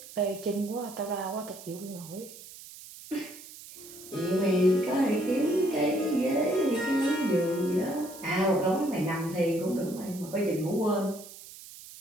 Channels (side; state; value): right; noise; hiss, 16 dB below the sound